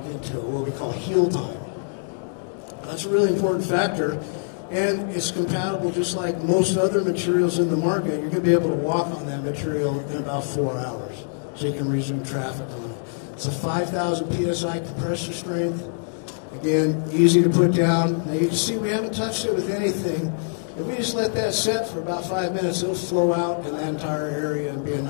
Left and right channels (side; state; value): right; silent; digital silence